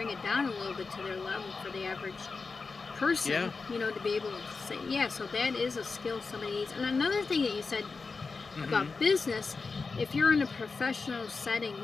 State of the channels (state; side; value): quieter; right; 4.4 dB